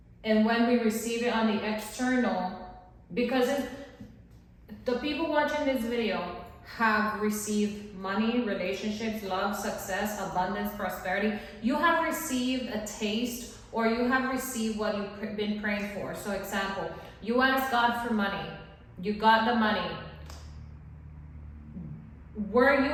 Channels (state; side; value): identical; both; correlation 1.00